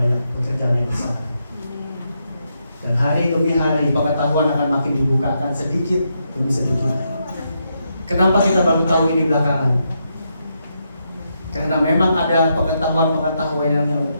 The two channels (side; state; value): both; inverted; correlation -0.81